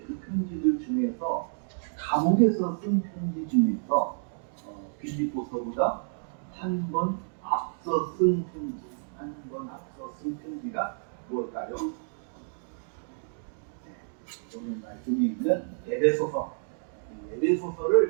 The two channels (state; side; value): silent; left; digital silence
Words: 그 편지들 중에서 감옥에서 쓴 편지 중에서 빌립보서보다 한 번 앞서 쓴 편지가 무엇일까요? 오늘 말씀이 있는 에베소서.